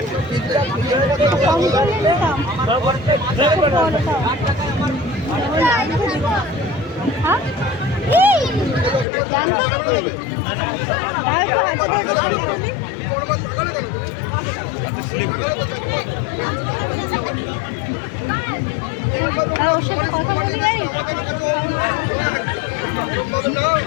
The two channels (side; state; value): right; drops out; at 9.1 s